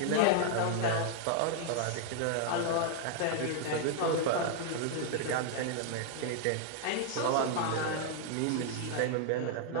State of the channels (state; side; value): different; both; correlation 0.00